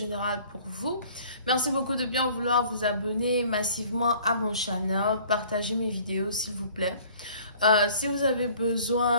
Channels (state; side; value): inverted; both; correlation -0.52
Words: pour vous. Merci beaucoup de bien vouloir vous abonner massivement à mon channel, partagez mes vidéos s'il vous plaît. Si vous avez